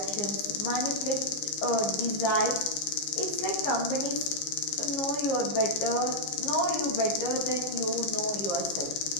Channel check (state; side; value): late; right; 15 ms